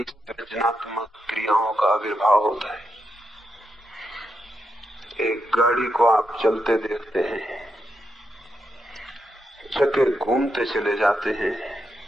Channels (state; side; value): normal; both; correlation 0.84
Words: सृजनात्मक क्रियाओं का आविर्भाव होता है। एक गाड़ी को आप चलते देखते हैं, चक्के घूमते चले जाते हैं,